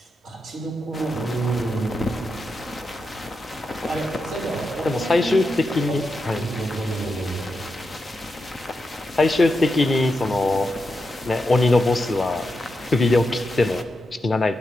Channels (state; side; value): normal; both; correlation 0.87